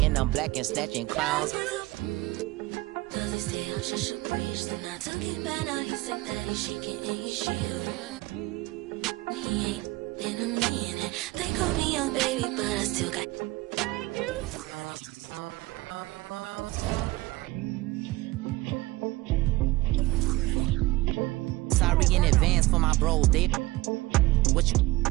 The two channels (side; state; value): left; quieter; 19.7 dB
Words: and I'm black and snatching clowns. Does he stay out just a breeze? Then I took it back, now he's sick that he's shaking and he's shivering. He ain't in a minute. They call me young baby, but I still got. Sorry in advance for my bros. They what you